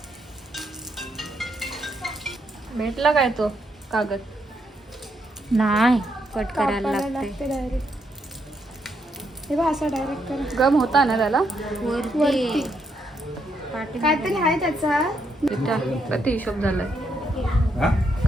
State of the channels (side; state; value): both; normal; correlation 0.77